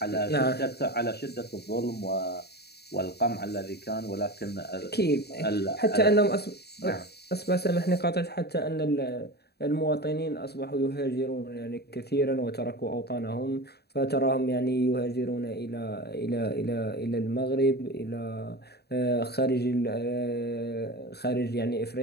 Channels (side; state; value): right; late; 0.47 ms